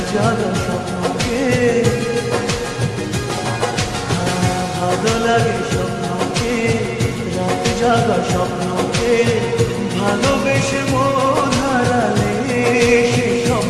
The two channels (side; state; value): both; identical; correlation 1.00